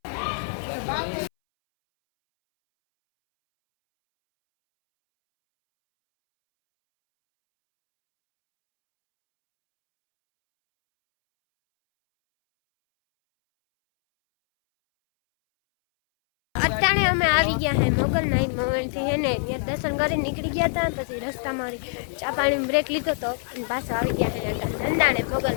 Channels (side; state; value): right; silent; 62 dB below the other